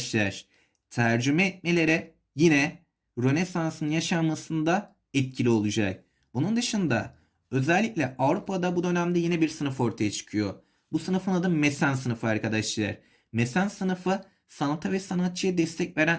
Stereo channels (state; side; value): identical; both; correlation 1.00